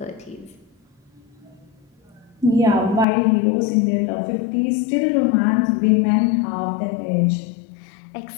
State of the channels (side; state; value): right; drops out; at 3.1 s